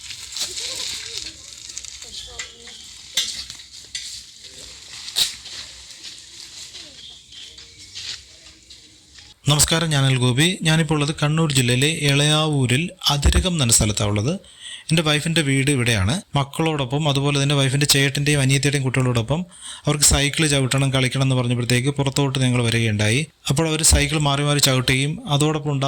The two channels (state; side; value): identical; both; correlation 1.00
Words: നമസ്കാരം, ഞാൻ ഗോപി. ഞാനിപ്പോൾ ഉള്ളത് കണ്ണൂർ ജില്ലയിലെ എളയാവൂരിൽ അതിരകം എന്ന സ്ഥലത്താണ് ഉള്ളത്. എൻ്റെ വൈഫിൻ്റെ വീട് ഇവിടെയാണ്. മക്കളോടൊപ്പം അതുപോലെ തന്നെ വൈഫിൻ്റെ ചേട്ടൻ്റെയും അനിയത്തിയുടെയും കുട്ടികളോടൊപ്പം അവർക്ക് സൈക്കിൾ ചവിട്ടണം, കളിക്കണം എന്ന് പറഞ്ഞപ്പോഴത്തേക്ക് പുറത്തോട്ട് ഞങ്ങൾ വരികയുണ്ടായി. അപ്പോൾ അവർ സൈക്കിൾ മാറി മാറി ചവിട്ടുകയും അതോടൊപ്പം